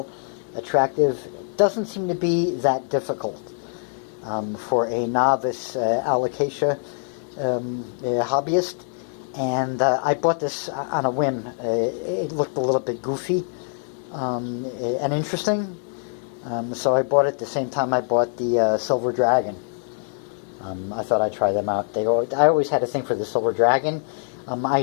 attractive. It doesn't seem to be that difficult for a novice Alocasia hobbyist. And I bought this on a whim. It looked a little bit goofy and interesting. So I bought it the same time I bought the Silver Dragon. I thought I'd try them out. I always had a thing for the Silver Dragon. I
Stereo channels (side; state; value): right; silent; digital silence